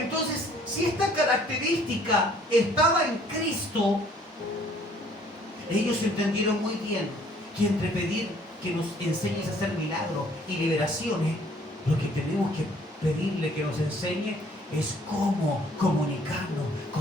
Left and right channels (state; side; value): normal; both; correlation 0.59